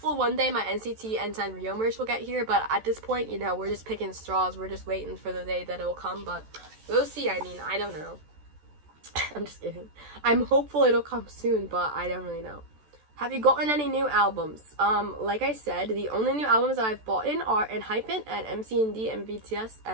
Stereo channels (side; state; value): left; late; 14 ms